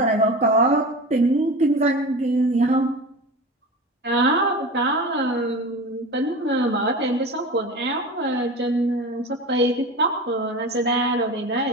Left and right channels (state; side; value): normal; both; correlation 0.30